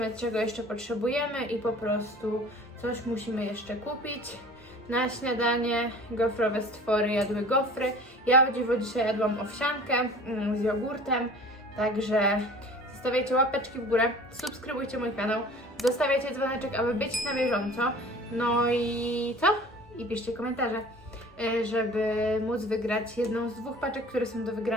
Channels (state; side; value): normal; both; correlation 0.44